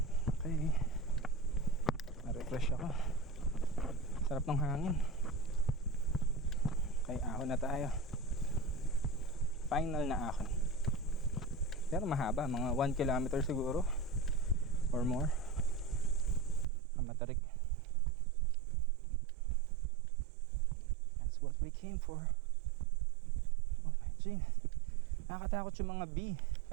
Okay. Na-refresh ako. Sarap ng hangin. Okay, ahon na tayo. Final na ahon. Pero mahaba, mga 1 kilometer siguro or more. Ang matarik. That's what we came for. Oh my G. Nakakatakot yung mga bee.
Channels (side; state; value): left; drops out; at 16.7 s